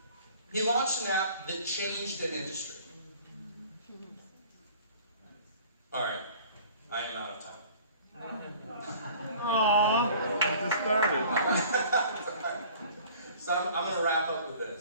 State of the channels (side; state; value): both; inverted; correlation -0.49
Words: He launched an app that changed an industry. Alright, I am out of time. Aww, just started. So I'm going to wrap up with